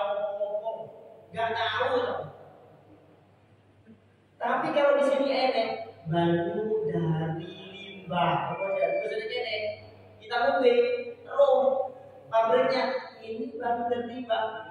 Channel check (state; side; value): identical; both; correlation 1.00